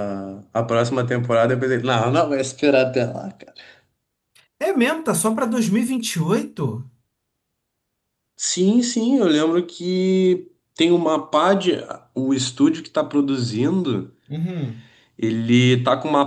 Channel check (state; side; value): identical; both; correlation 1.00